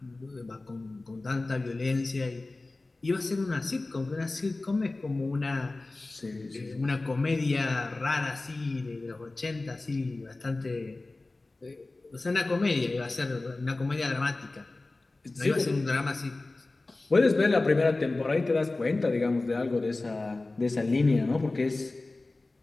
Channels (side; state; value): right; quieter; 3.2 dB